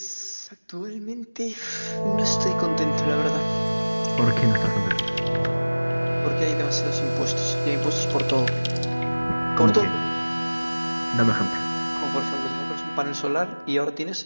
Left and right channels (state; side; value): inverted; both; correlation -1.00